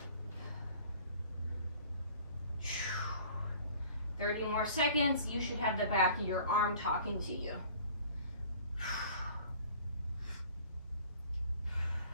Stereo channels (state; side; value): inverted; both; correlation -0.49